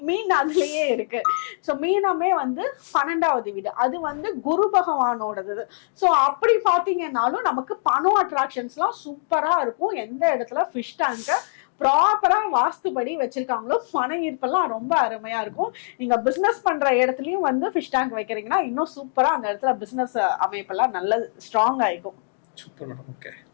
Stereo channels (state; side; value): silent; right; digital silence